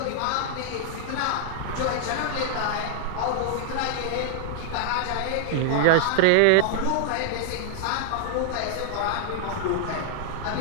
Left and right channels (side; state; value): both; different; correlation -0.01